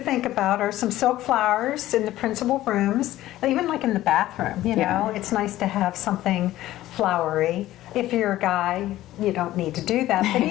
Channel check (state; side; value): quieter; right; 14.9 dB